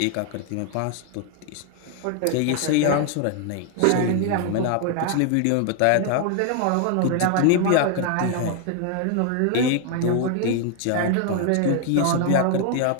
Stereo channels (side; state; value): both; different; correlation 0.00